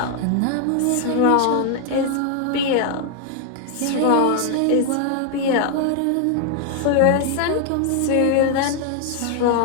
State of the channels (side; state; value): both; different; correlation 0.00